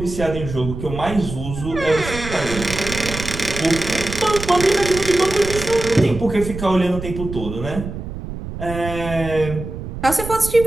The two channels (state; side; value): noise; right; rumble, 8 dB below the sound